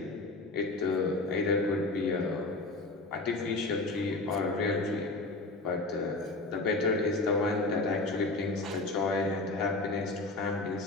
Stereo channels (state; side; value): quieter; right; 3.1 dB